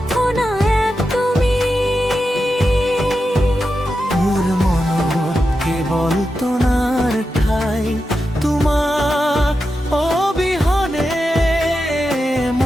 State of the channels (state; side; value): normal; both; correlation 0.89